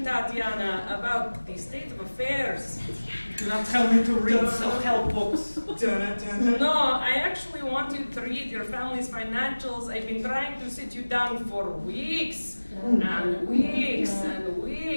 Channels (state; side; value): inverted; both; correlation -1.00